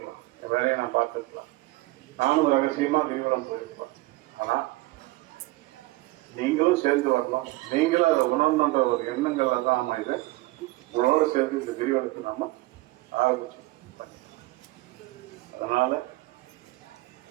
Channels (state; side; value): quieter; left; 20.4 dB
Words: என் வேலையை நான் பார்த்துருக்கலாம், நானும் ரகசியமா கிரிவலம் போயிருப்பேன். ஆனா நீங்களும் சேர்ந்து வரலாம். நீங்களும் அதை உணர்ந்த ஒரு எண்ணங்களை தான் நாம இதை உங்களோட சேர்ந்து இந்த கிரிவலத்தை நாம ஆரம்பிச்சோம். அதனால